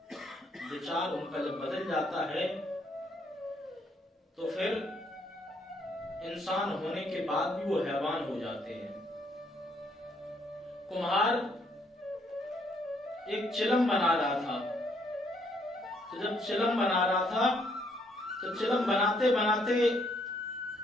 विचार उनका जब बदल जाता है तो फिर इंसान होने के बाद भी वो हैवान हो जाते हैं। कुम्हार एक चिलम बना रहा था, तो जब चिलम बना रहा था तो चिलम बनाते बनाते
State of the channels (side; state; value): both; normal; correlation 0.70